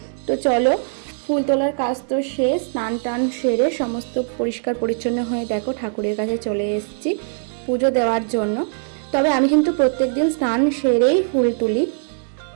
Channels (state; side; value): silent; left; 65 dB below the other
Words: তো চলো ফুল তোলার কাজ তো শেষ, স্নান টান সেরে সমস্ত পরিষ্কার পরিচ্ছন্ন হয়ে দেখো ঠাকুরের কাছে চলে এসেছি পুজো দেওয়ার জন্য। তবে আমি কিন্তু প্রত্যেক দিন স্নান সেরেই ফুল তুলি।